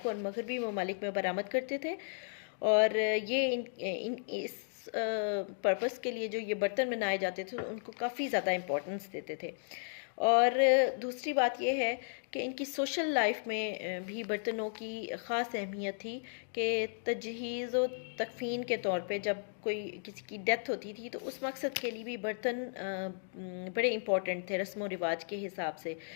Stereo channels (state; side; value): silent; right; digital silence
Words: और मगरबी ममालिक में बरामद करते थे। और ये इस पर्पस के लिए जो ये बर्तन बनाए जाते थे उनको काफ़ी ज़्यादा इम्पोर्टेंस देते थे। और दूसरी बात यह है कि इनकी सोशल लाइफ में भी बर्तनों की ख़ास अहमियत थी कि तजहीज़ व तकफ़ीन के तौर पे जब कोई किसी की डेथ होती थी तो उस मकसद के लिए भी बर्तन बड़े इम्पॉर्टेंट थे रस्म व रिवाज के हिसाब से।